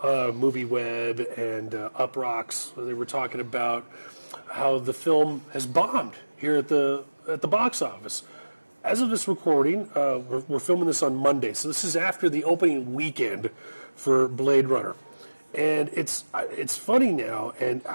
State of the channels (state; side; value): inverted; both; correlation -1.00